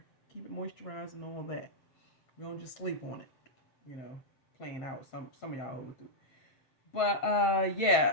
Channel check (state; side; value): late; right; 7.8 ms